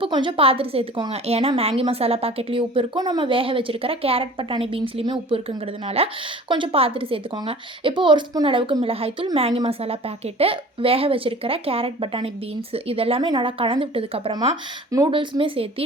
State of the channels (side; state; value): both; normal; correlation 0.44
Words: கொஞ்சம் பார்த்துட்டு சேர்த்துக்கோங்க. ஏன்னா மேங்கி மசாலா பாக்கெட்லேயும் உப்பு இருக்கும், நம்ம வேக வச்சுருக்கிற கேரட், பட்டாணி, பீன்ஸ்லேயுமே உப்பு இருக்குங்கிறதுனால கொஞ்சம் பார்த்துட்டு சேர்த்துக்கோங்க. இப்போது ஒரு ஸ்பூன் அளவுக்கு மிளகாய்த்தூள், மேங்கி மசாலா பாக்கெட்டு, வேக வச்சுருக்கிற கேரட், பட்டாணி, பீன்ஸ் இதெல்லாமே நல்லா கலந்து விட்டதுக்கப்புறமா நூடுல்ஸுமே